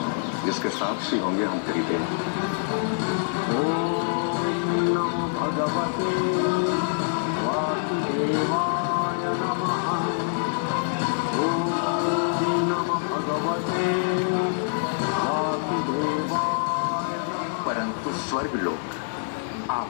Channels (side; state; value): right; silent; digital silence